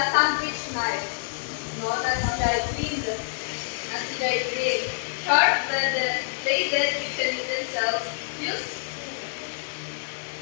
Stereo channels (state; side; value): silent; right; digital silence